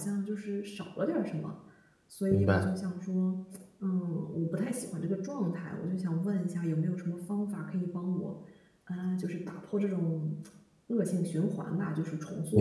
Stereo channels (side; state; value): both; identical; correlation 1.00